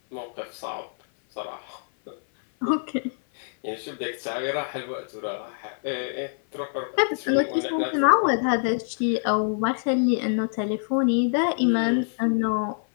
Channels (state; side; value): silent; right; 57 dB below the other